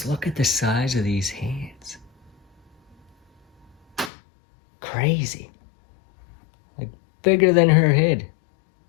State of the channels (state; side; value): drops out; right; at 4.1 s